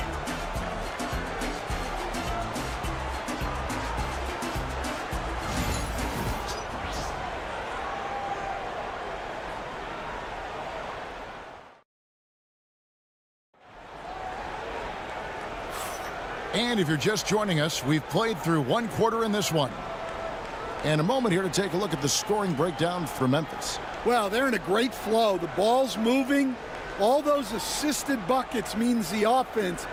And if you're just joining us, we've played through 1 quarter in this one. And a moment here to take a look at the scoring breakdown for Memphis. Well, they're in a great flow. The ball's moving. All those assisted buckets means the offense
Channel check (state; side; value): identical; both; correlation 1.00